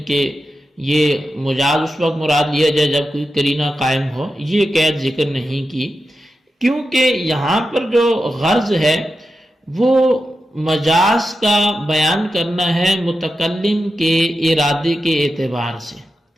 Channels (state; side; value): normal; both; correlation 0.90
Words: کہ یہ مجاز اس وقت مراد لیا جائے جب کوئی قرینہ قائم ہو، یہ قید ذکر نہیں کی، کیونکہ یہاں پر جو غرض ہے وہ مجاز کا بیان کرنا ہے متکلم کے ارادے کے اعتبار سے،